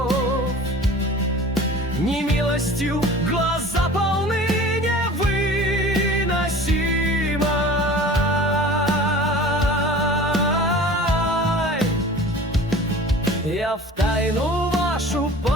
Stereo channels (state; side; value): normal; both; correlation 0.42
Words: Немилостью глаза полны невыносимой. Я в тайну вашу